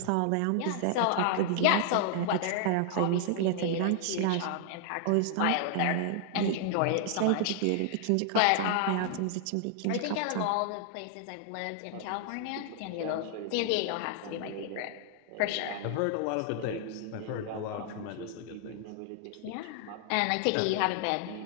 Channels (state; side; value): different; both; correlation 0.00